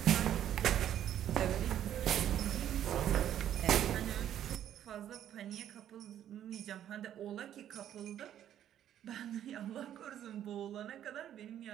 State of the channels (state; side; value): quieter; left; 10.9 dB